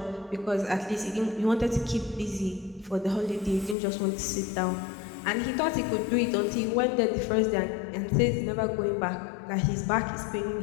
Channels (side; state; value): right; drops out; at 3.8 s